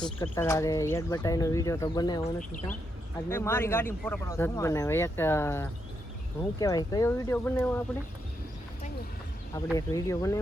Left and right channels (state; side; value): normal; both; correlation 0.81